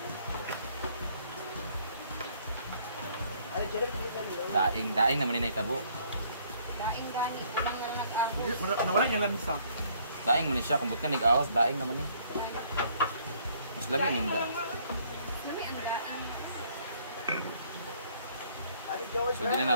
Daing naman ni tabo. Daing gani. Ilang na nag-agos. nawala niya lang isa. Daing man siya kung but ka nag-awas, daing naman ni. Mas labi ninda. Lami ang daing. So di na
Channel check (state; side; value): inverted; both; correlation -0.63